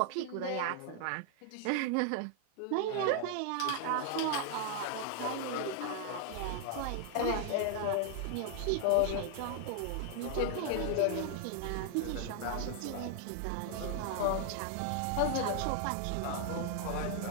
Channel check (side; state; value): both; different; correlation 0.00